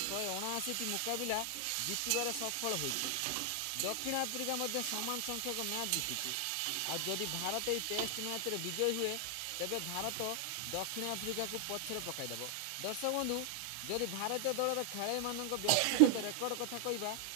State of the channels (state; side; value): different; both; correlation 0.00